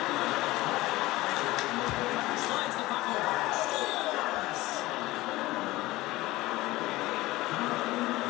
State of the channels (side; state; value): right; quieter; 18.6 dB